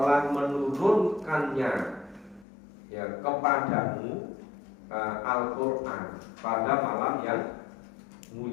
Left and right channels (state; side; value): drops out; right; at 2.5 s